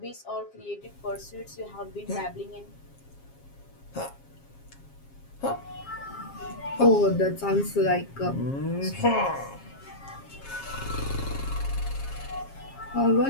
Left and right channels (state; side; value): late; right; 7.4 ms